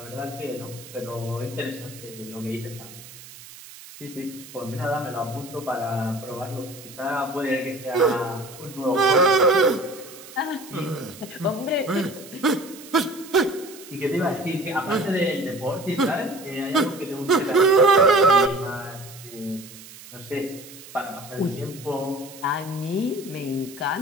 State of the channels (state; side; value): noise; right; hiss, 17 dB below the sound